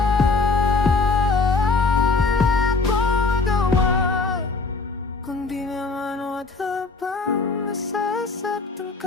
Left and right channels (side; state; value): right; quieter; 4.0 dB